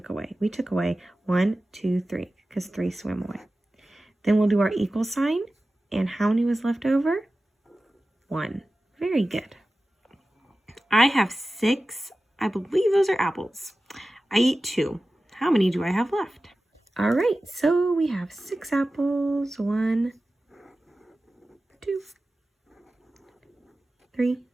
away. We took away 1, 2, 3, because 3 swam away. Then we'll do our equal sign, and how many was left over? 1. Very good. I have 6, I believe those are apples. I eat 2. How many do I have left? All right, so we have 6 apples. 1, 2, 3,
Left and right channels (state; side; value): normal; both; correlation 0.95